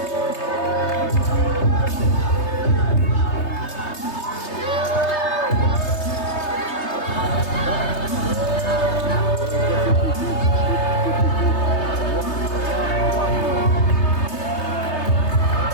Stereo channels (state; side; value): late; right; 3.3 ms